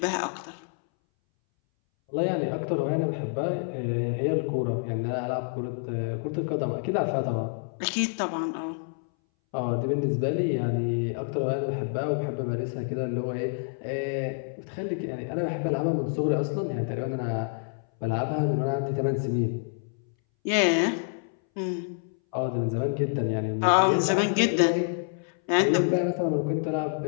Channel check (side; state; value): right; silent; 60 dB below the other